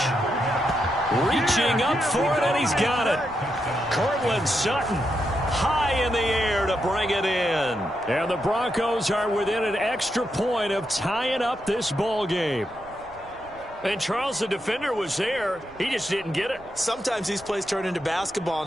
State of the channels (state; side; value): noise; right; rumble, 24 dB below the sound